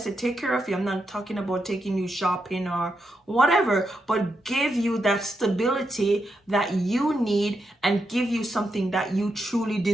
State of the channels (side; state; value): both; normal; correlation 0.84